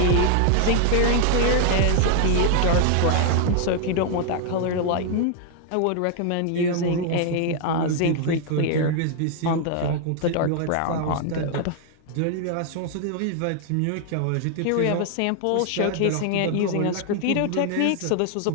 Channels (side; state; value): both; different; correlation 0.00